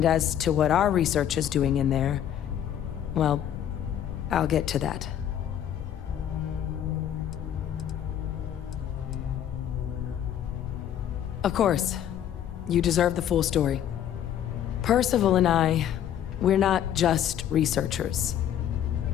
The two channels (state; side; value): quieter; right; 10.3 dB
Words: as to what our research is doing in there, Well, I'll get to that. Of course, you deserve the full story. Percival and I, we're not just researchers.